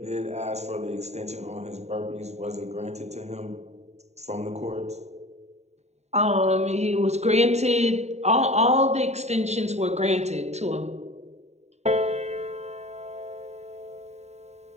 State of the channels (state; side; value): late; left; 0.32 ms